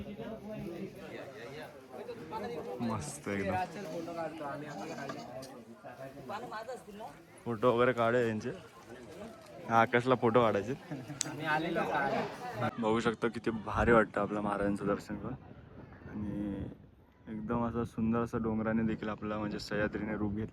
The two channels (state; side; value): identical; both; correlation 1.00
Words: मस्त एकदम फोटो वगैरे काढे यांचे. आकाशला फोटो काढायचे. बघू शकतो किती भारी वाटतं आपल्या महाराजांचं दर्शन करून. आणि एकदम असं सुंदर असं डोंगराने देखील आपला म्हणजे सह्याद्रीने रूप